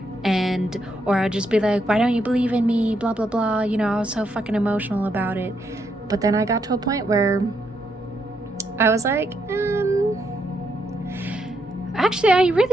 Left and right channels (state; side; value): normal; both; correlation 0.78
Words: Or I'd just be like, why don't you believe in me, blah, blah, blah. You know, I was so fucking emotional about it. But then I got to a point where I was like, actually, I